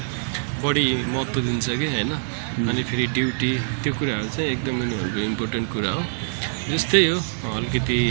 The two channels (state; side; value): silent; left; digital silence